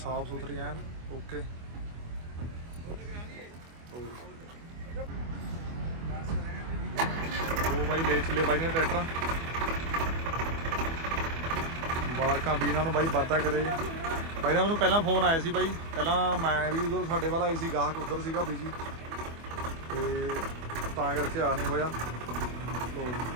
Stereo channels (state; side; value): late; left; 24 ms